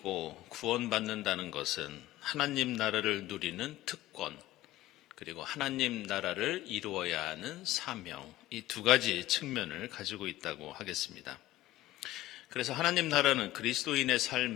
구원받는다는 것은 하나님 나라를 누리는 특권, 그리고 하나님 나라를 이루어야 하는 사명, 이 두 가지 측면을 가지고 있다고 하겠습니다. 그래서 하나님 나라는 그리스도인의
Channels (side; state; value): right; quieter; 15.7 dB